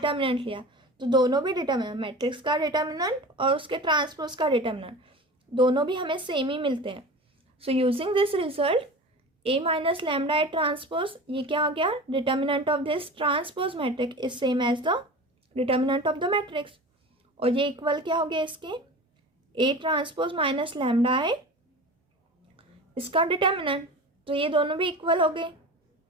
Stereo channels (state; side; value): normal; both; correlation 0.34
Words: लिया, तो दोनों भी डिटर्मिनेंट, मैट्रिक्स का डिटर्मिनेंट और उसके ट्रांसपोज का डिटर्मिनेंट दोनों भी हमें सेम ही मिलते हैं। So using this result A minus lambda I transpose, ये क्या हो गया, determinant of this transpose matrix is same as the determinant of the matrix. और ये इक्वल क्या हो गया इसके, A transpose minus lambda I इसका डिटर्मिनेंट, तो ये दोनों भी इक्वल हो गए।